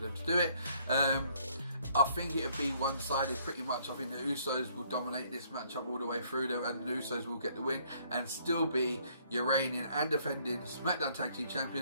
to do it. I think it'll be one-sided pretty much. I think the Usos will dominate this matchup all the way through there, and the Usos will get the win and still be your reigning and defending SmackDown Tag Team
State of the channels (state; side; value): inverted; both; correlation -0.65